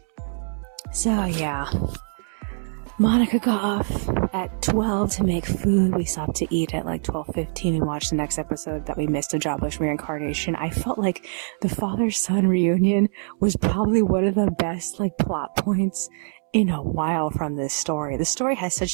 So yeah, Monica got off at 12 to make food. We stopped to eat at like 12:15 and watched the next episode that we missed of Jobless Reincarnation. I felt like the father-son reunion was probably one of the best like plot points in a while from this story. The story has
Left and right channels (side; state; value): left; silent; digital silence